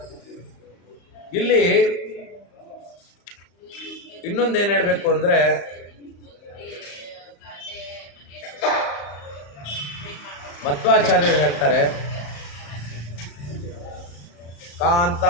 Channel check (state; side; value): late; right; 35 ms